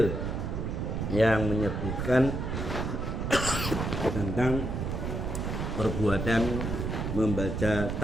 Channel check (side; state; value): right; noise; rumble, 2 dB below the sound